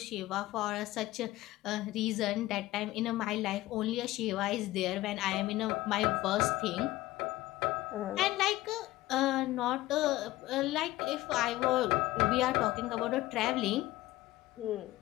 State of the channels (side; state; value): right; quieter; 17.2 dB